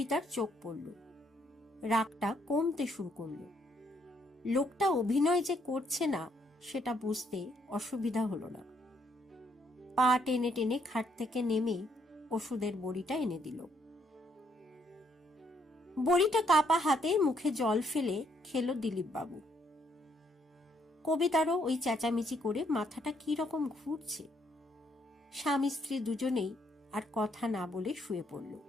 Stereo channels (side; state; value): both; normal; correlation 0.71